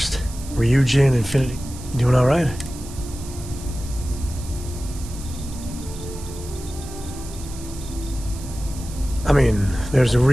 Ryujin, Infinity. You doing all right? I mean, there's a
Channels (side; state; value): right; noise; hiss, 16 dB below the sound